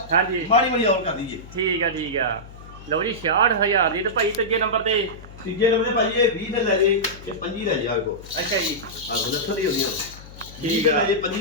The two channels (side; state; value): left; noise; hum, 17 dB below the sound